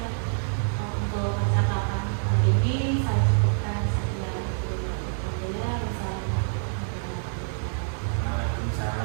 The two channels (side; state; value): left; silent; digital silence